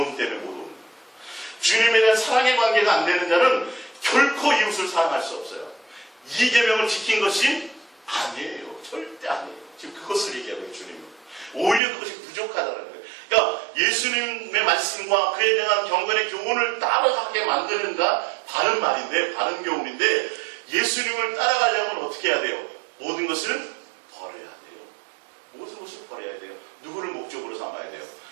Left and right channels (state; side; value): drops out; left; at 11.8 s